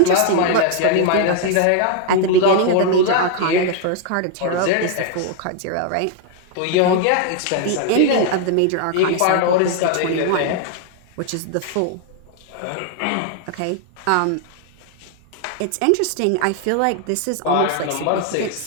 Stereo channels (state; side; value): different; both; correlation 0.00